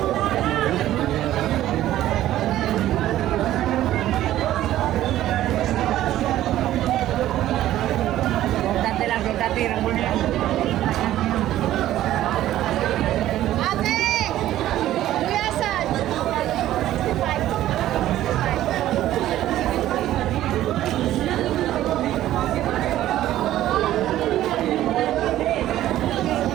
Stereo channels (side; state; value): left; quieter; 13.6 dB